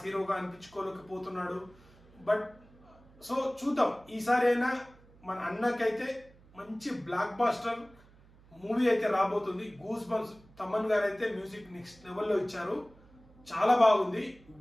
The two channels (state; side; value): noise; right; hum, 26 dB below the sound